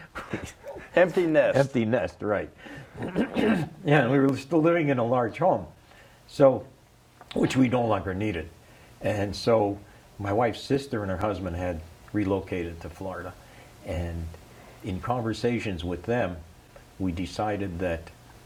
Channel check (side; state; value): both; identical; correlation 1.00